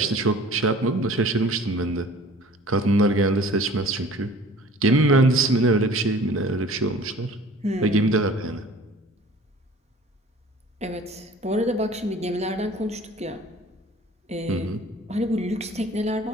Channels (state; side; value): normal; both; correlation 0.47